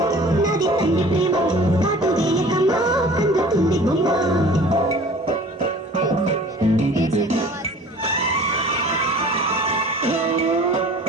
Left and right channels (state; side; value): normal; both; correlation 0.46